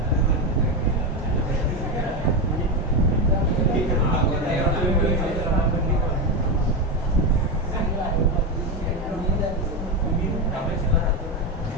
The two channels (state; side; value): normal; both; correlation 0.13